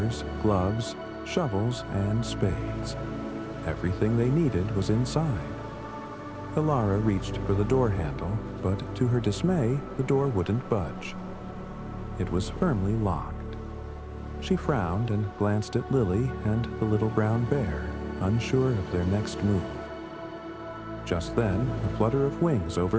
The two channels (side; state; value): both; identical; correlation 1.00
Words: gloves, shovels, and spades. Everything they needed was inside. Elara reached for the door handle, but to her dismay, the door wouldn't budge. It was firmly locked. She frowned and glanced at Lily and the little brown bear, unsure of their next move. Just then, a flutter of wings